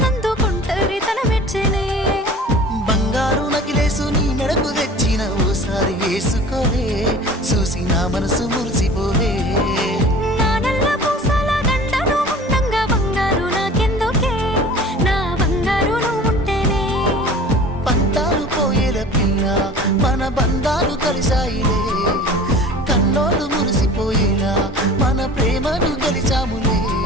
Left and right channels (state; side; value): normal; both; correlation 0.42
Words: ఒంటరితనం మెచ్చనే బంగారు నకిలేసు నీ మెడకు తెచ్చిన ఓసారి వేసుకోవే చూసి నా మనసు మురిసిపోవే మన బంధాలు కలిసాయిలే కన్నోళ్ళు మురిసిపోయేలా మన ప్రేమను గెలిచాములే